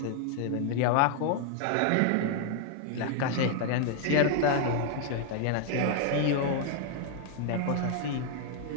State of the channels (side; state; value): both; different; correlation 0.00